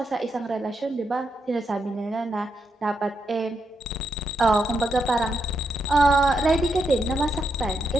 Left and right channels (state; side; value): normal; both; correlation 0.82